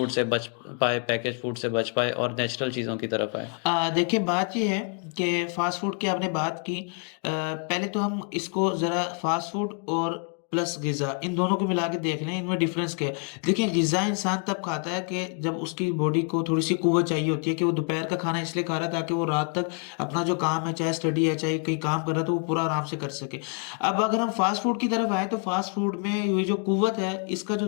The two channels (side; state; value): right; quieter; 39.6 dB